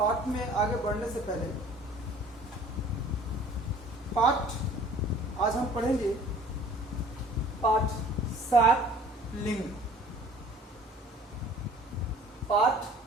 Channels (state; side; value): normal; both; correlation 0.50